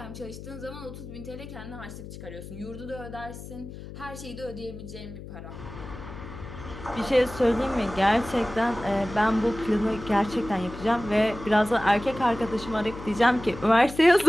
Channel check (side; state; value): left; noise; hum, 12 dB below the sound